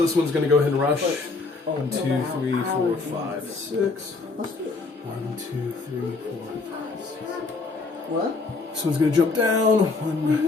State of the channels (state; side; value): quieter; right; 3.9 dB